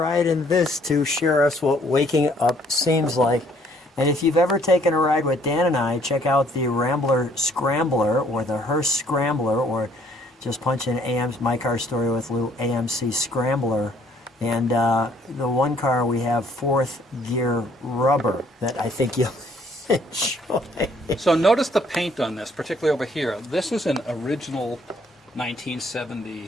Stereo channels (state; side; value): normal; both; correlation 0.63